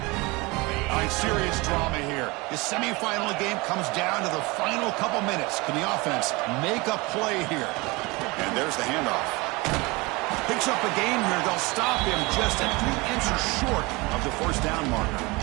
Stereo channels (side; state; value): left; quieter; 24.5 dB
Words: All right, serious drama here. The semifinal game comes down to the final couple minutes. Can the offense make a play here? And there's the handoff. Picks up a gain here. They'll stop him just at 3 inches short of the first down marker.